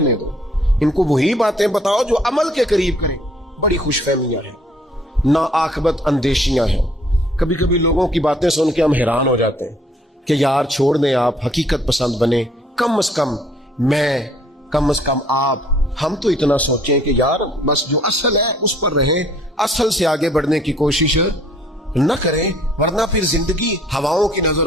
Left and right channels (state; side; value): normal; both; correlation 0.61